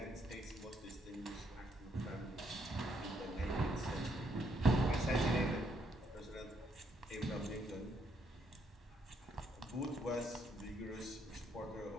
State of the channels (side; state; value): both; normal; correlation 0.73